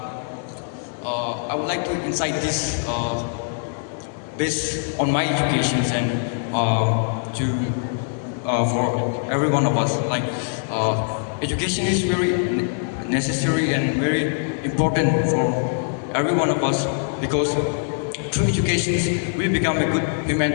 would like to incite this based on my educations and for every one of us. Like education is very necessary and very important for every one of us, because through education we become a good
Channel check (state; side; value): silent; right; 64 dB below the other